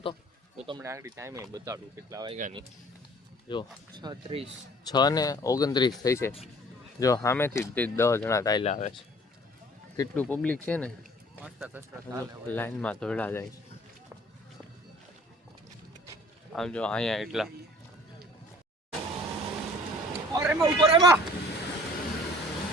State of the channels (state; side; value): normal; both; correlation 0.52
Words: તો તમને આગળ ટાઈમે બતાડું કેટલા વાયગાની. જો 6:29 થઈ છે. જો સામેથી 10 જણા ચાલ્યા આવે છે. કેટલું પબ્લિક છે ને, લાઈનમાં દોડા જાય છે. આમ જો અહીંયા એટલા